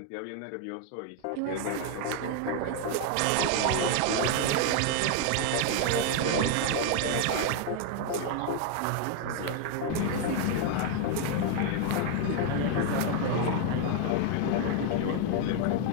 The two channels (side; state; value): both; different; correlation 0.00